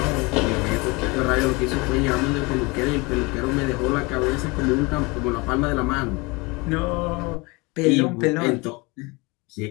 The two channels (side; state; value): right; quieter; 26.1 dB